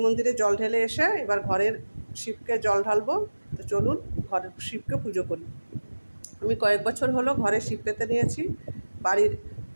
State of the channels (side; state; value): both; inverted; correlation -1.00